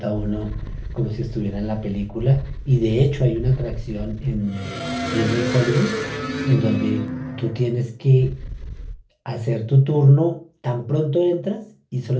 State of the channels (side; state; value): both; identical; correlation 1.00